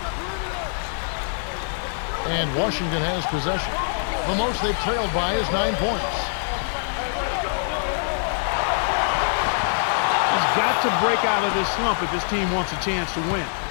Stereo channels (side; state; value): right; silent; digital silence